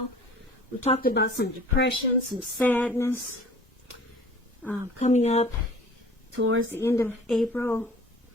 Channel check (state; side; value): normal; both; correlation 0.47